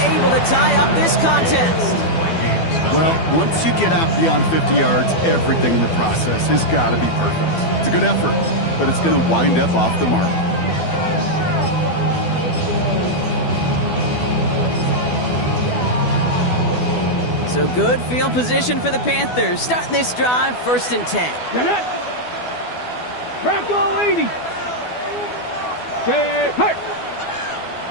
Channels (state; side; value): late; right; 12 ms